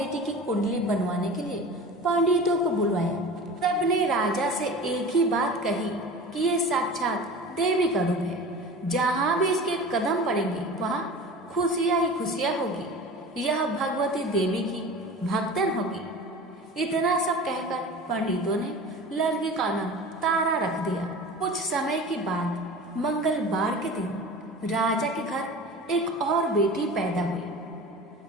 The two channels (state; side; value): normal; both; correlation 0.36